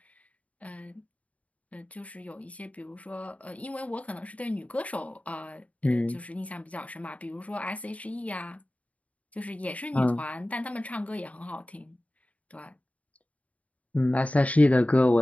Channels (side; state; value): right; late; 0.068 ms